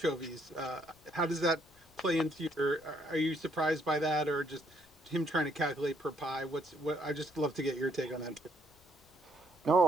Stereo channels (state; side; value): noise; left; rumble, 29 dB below the sound